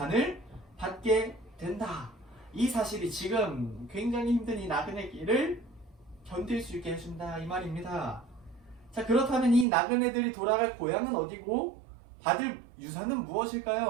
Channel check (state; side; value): drops out; left; at 9.7 s